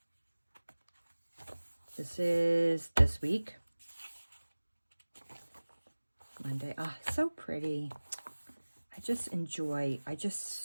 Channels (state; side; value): inverted; both; correlation -1.00